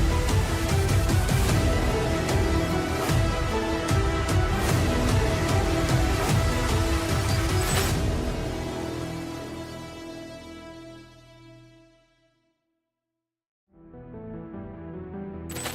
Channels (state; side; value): identical; both; correlation 1.00